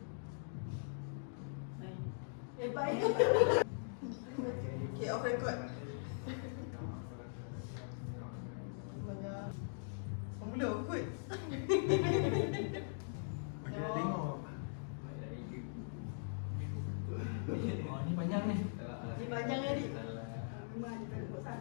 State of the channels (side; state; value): right; silent; digital silence